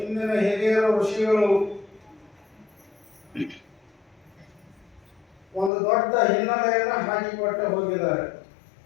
ಹಿರಿಯರ ಋಷಿಗಳು ಒಂದು ದೊಡ್ಡ ಹಿನ್ನೆಲೆಯನ್ನು ಹಾಕಿಕೊಟ್ಟು ಹೋಗಿದ್ದಾರೆ.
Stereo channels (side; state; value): right; drops out; at 5.7 s